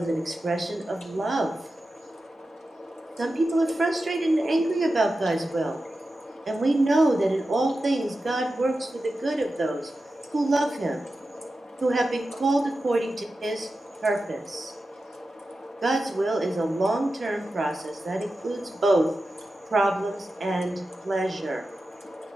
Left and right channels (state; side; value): normal; both; correlation 0.92